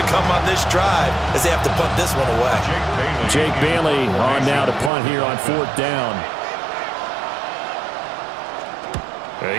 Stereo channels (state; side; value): drops out; left; at 4.9 s